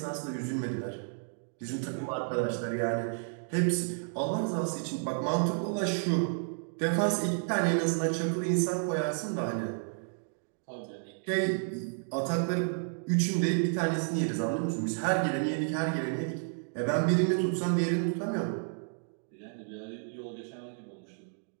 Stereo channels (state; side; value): silent; left; digital silence